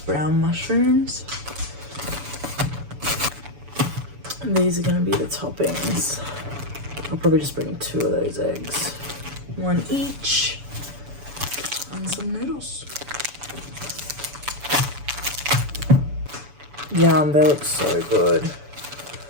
mushrooms. And these are gonna be the toppings. I'll probably just bring 2 of those eggs, 1 each, and some noodles. Yum, they look so good.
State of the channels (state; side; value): late; left; 7.0 ms